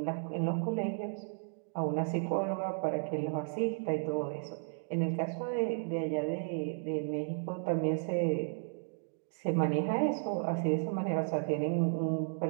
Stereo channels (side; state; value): left; silent; digital silence